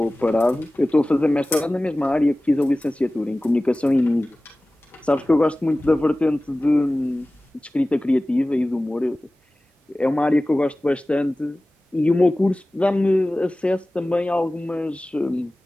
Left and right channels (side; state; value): both; normal; correlation 0.97